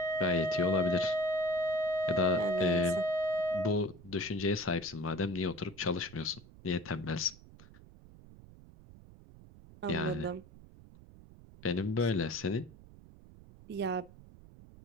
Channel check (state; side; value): noise; right; rumble, 21 dB below the sound